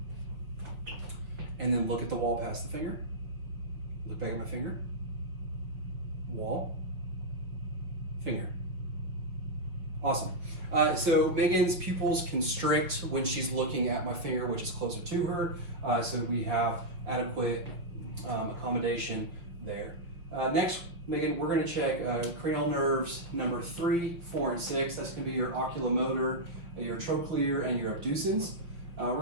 and then look at the wall past the finger. Look back at my finger. Wall. Finger. Awesome. So Megan's pupils constrict when she's looking at my finger, which is closer to her. So we have adequate accommodation there. Next, Megan, we're going to check cranial nerves number 3, 4, and 6. That's going to be your oculomotor, your trochlear, and your abducens. We're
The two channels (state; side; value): late; left; 5.8 ms